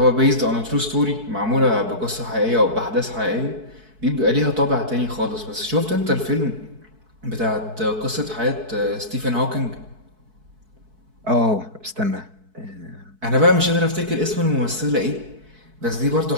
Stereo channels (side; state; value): left; late; 4.6 ms